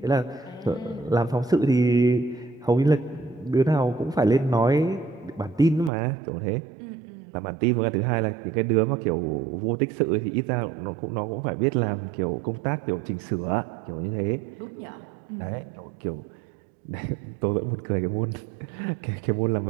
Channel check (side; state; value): left; drops out; at 5.9 s